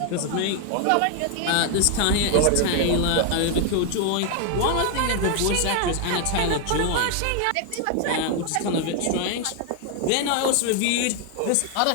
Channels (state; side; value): different; both; correlation 0.00